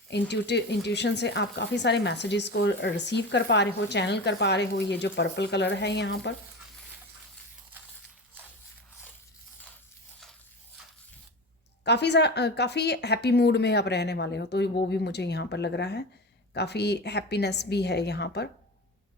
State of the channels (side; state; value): both; normal; correlation 0.28